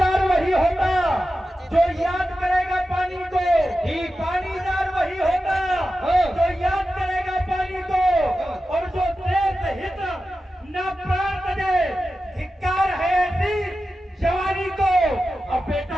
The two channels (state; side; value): normal; both; correlation 0.93